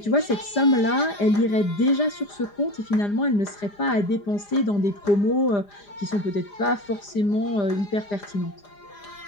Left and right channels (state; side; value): late; right; 4.9 ms